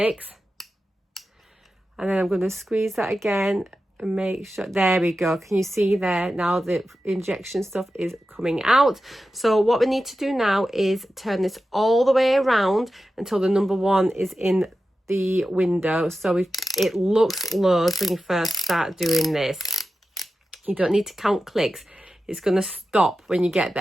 and then I'm going to squeeze that again and make sure. There we go. Can you see there? Now the injection stuff is coming out. So what we need to do now is turn this all the way around until the number 1 is in the window. So it looks loads when you first start doing this. You don't need to count clicks. It's going to stop when you get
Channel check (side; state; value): both; normal; correlation 0.92